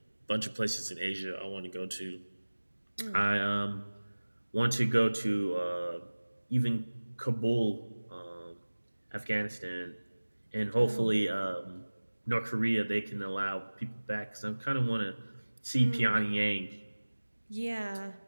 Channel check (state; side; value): inverted; both; correlation -1.00